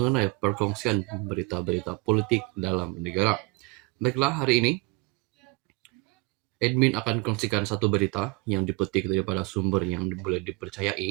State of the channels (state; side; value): quieter; left; 25.7 dB